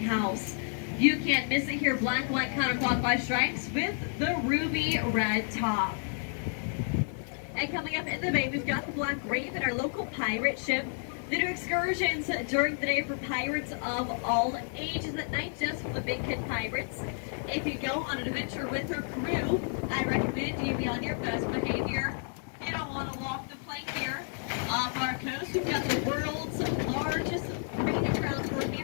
You can't miss it here, black, white, counterclockwise stripes with the ruby red top. And coming up in the bay, we've got the Black Raven, our local pirate ship. They do excursions during the day for pirates of all ages, at night just for the big kid pirates. If you go on an adventure with her crew, I recommend you be on your best behavior. You don't want to walk the plank here. Off our coast, we've got the world's largest breeding grounds for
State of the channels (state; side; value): silent; right; 57 dB below the other